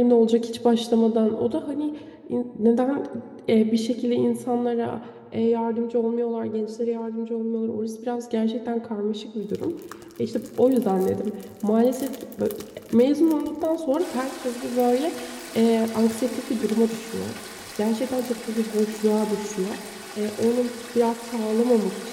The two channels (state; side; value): identical; both; correlation 1.00